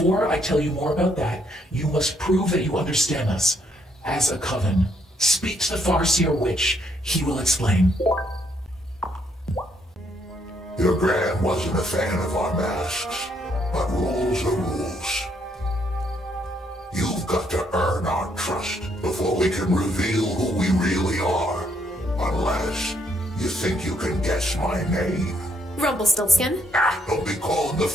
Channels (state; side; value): normal; both; correlation 0.72